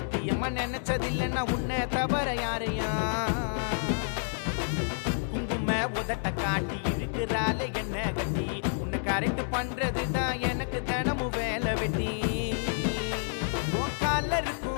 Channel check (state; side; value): silent; right; digital silence